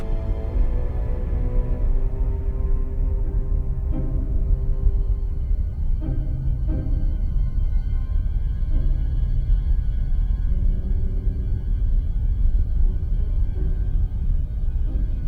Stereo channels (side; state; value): both; identical; correlation 1.00